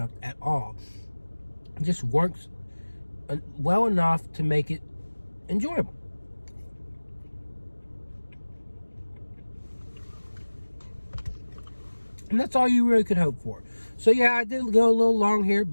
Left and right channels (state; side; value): inverted; both; correlation -1.00